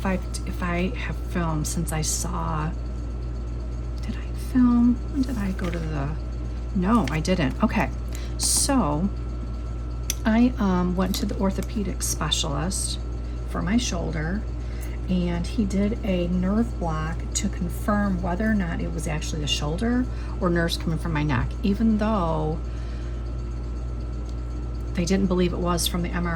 I have filmed since I saw. Did I film? When did I go to the? No, I didn't. Okay, so I went to the orthopedic specialist for my shoulder, and he did a nerve block to confirm whether or not it was actually the shoulder or nerves coming from my neck, even though they didn't believe it was from the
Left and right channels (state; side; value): identical; both; correlation 1.00